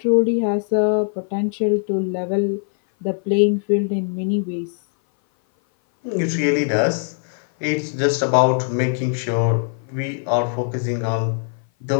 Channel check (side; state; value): right; silent; 57 dB below the other